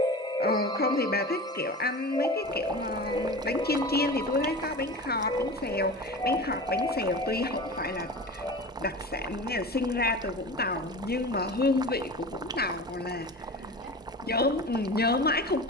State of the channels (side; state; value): both; normal; correlation 0.33